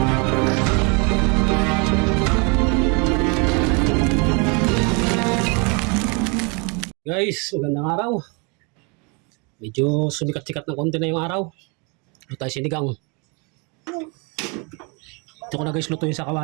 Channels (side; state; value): left; quieter; 32.6 dB